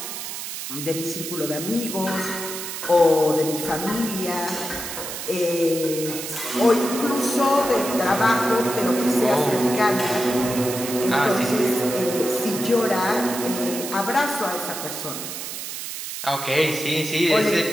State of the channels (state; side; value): noise; right; hiss, 7 dB below the sound